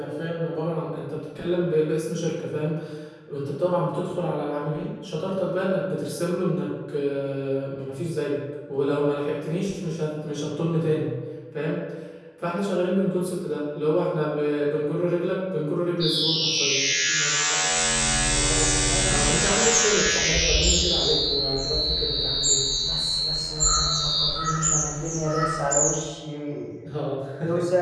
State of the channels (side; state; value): both; identical; correlation 1.00